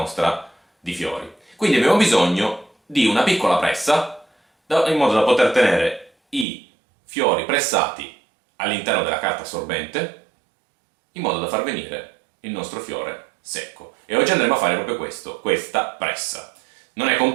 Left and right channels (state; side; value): drops out; left; at 6.5 s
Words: di fiori. Quindi abbiamo bisogno di una piccola pressa in modo da poter tenere i fiori pressati all'interno della carta assorbente in modo da far venire il nostro fiore secco. E oggi andremo a fare proprio questo, questa pressa. Non è